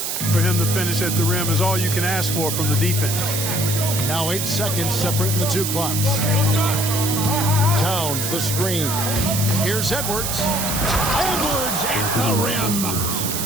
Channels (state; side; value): noise; right; hiss, 2 dB below the sound